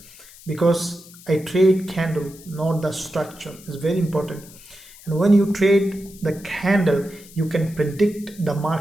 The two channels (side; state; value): left; noise; hiss, 21 dB below the sound